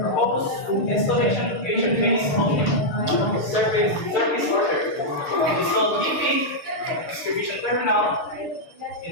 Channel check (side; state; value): right; late; 6.7 ms